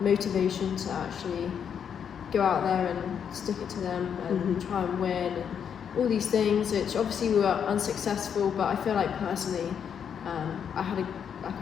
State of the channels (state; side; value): quieter; right; 7.8 dB